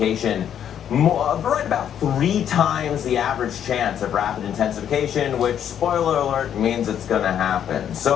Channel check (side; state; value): right; quieter; 9.4 dB